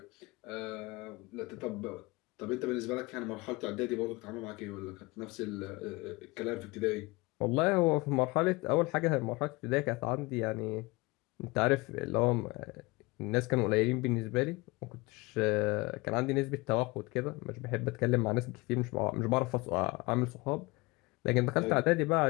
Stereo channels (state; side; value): quieter; right; 24.1 dB